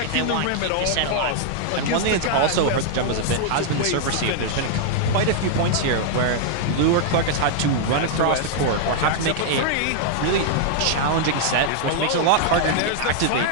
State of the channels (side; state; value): both; different; correlation -0.01